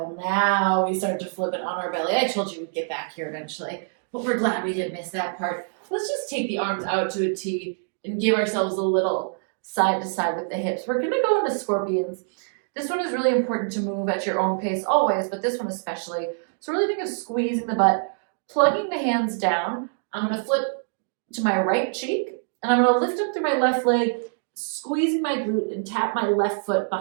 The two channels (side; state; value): left; silent; digital silence